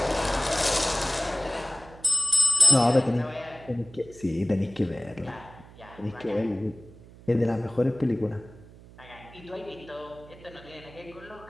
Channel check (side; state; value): right; noise; hum, 20 dB below the sound